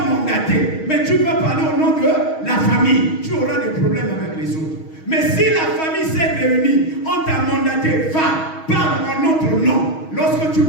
mandaté, mais tu peux parler au nom de la famille. Tu auras des problèmes avec les autres. Mais si la famille s'est réunie, on t'a mandaté, va, parle en notre nom. Lorsque tu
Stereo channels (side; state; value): right; late; 6.3 ms